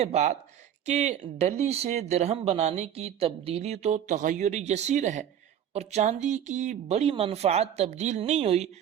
بات کہ ڈلی سے درہم بنانے کی تبدیلی تو تغیر یسیر ہے اور چاندی کی بڑی منفعت تبدیل نہیں ہوئی،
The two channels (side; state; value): left; quieter; 9.8 dB